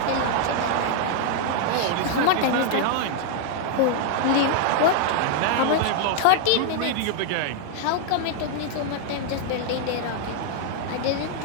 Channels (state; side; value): different; both; correlation 0.00